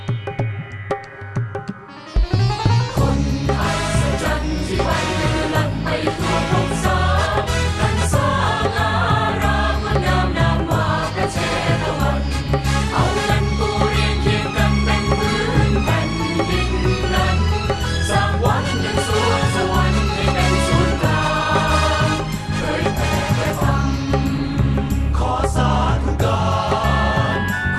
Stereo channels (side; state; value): both; identical; correlation 1.00